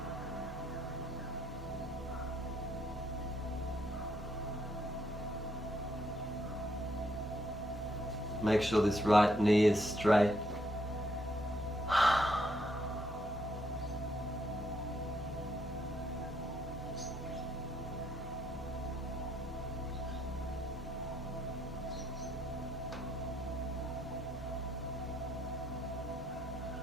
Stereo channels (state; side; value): normal; both; correlation 0.73